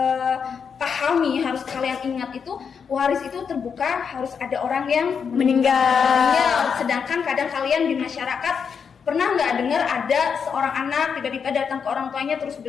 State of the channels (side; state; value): right; quieter; 6.5 dB